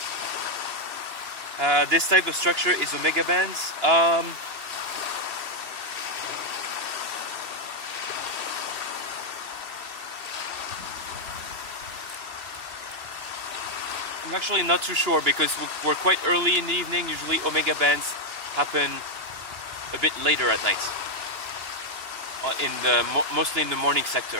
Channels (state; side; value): late; left; 2.9 ms